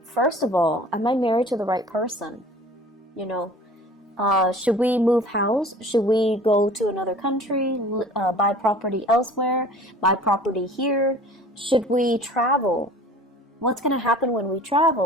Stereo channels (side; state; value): both; normal; correlation 0.45